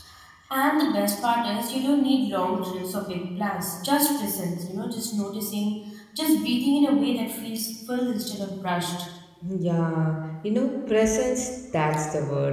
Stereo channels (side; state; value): both; identical; correlation 1.00